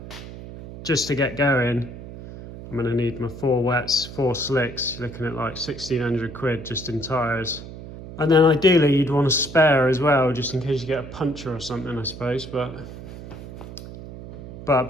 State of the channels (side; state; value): right; noise; hum, 13 dB below the sound